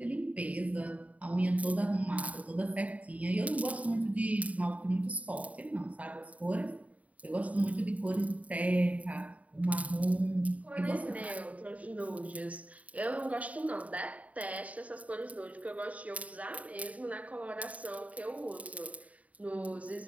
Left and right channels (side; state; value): left; late; 0.069 ms